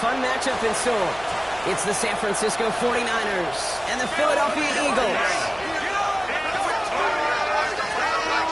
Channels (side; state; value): right; noise; hum, 23 dB below the sound